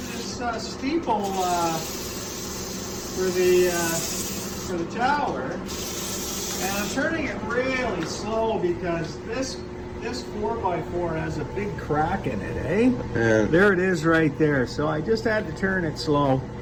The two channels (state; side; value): identical; both; correlation 1.00